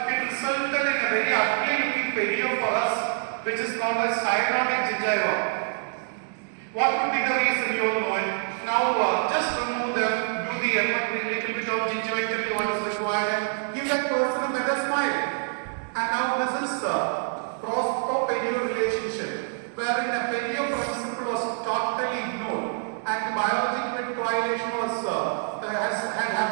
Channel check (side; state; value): left; silent; digital silence